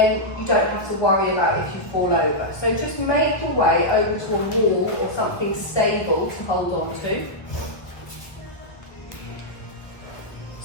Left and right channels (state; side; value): late; right; 1.0 ms